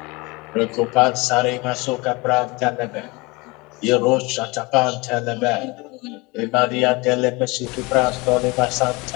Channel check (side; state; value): right; quieter; 25.2 dB